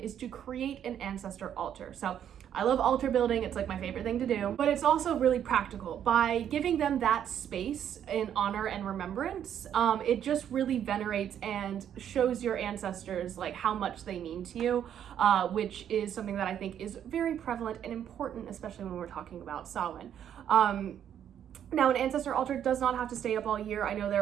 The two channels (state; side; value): quieter; left; 9.6 dB